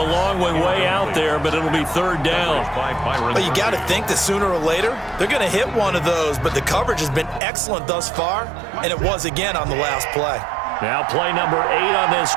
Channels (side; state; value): left; drops out; at 7.4 s